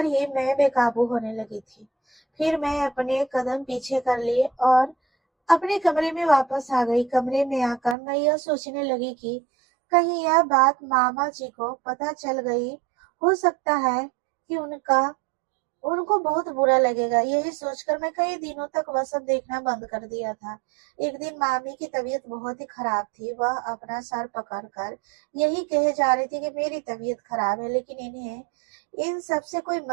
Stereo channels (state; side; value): drops out; left; at 8.0 s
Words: ही मैं बेकाबू होने लगी थी। फिर मैं अपने कदम पीछे कर लिए और अपने कमरे में वापस आ गई। कमरे में आकर मैं यह सोचने लगी कि कहीं यह बात मामा जी को पता चल गई। हो सकता है कि उनका उनको बहुत बुरा लगेगा। यही सोचकर मैं कई दिनों तक वह सब देखना बंद कर दिया था। एक दिन मामी की तबीयत बहुत ही खराब थी। वह अपना सर पकड़कर यही कहे जा रही थी कि मेरी तबीयत खराब है, लेकिन इन्हें इन सब से कोई